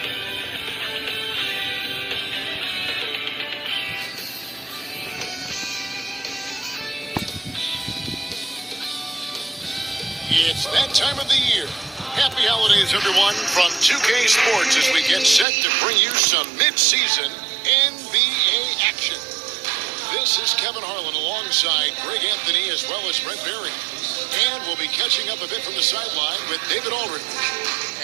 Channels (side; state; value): left; drops out; at 15.5 s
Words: It's that time of the year. Happy holidays, everyone, from 2K Sports as we get set to bring you some mid-season NBA action. This is Kevin Harlan alongside Greg Anthony as well as Brent Berry. And we'll be catching up a bit from the sideline with David Aldridge.